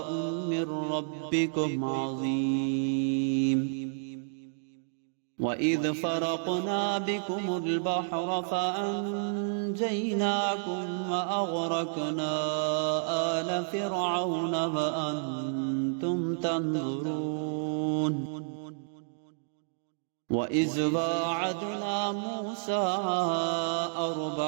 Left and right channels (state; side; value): silent; left; digital silence